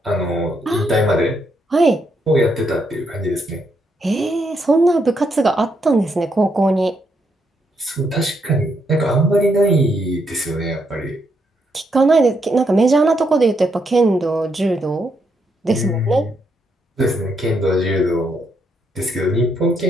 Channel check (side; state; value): both; normal; correlation 0.77